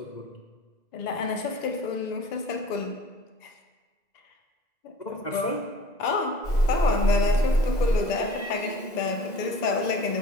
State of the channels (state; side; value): late; right; 2.0 ms